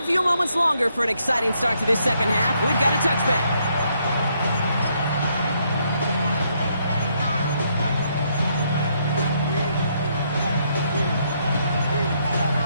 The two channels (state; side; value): inverted; both; correlation -0.73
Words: few moments longer for an exciting start to this second half. We've got a touchback.